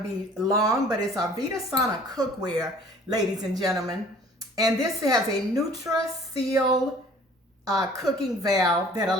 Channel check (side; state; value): both; normal; correlation 0.51